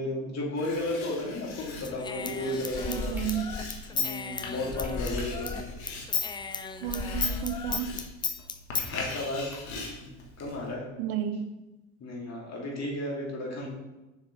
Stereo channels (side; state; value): both; normal; correlation 0.18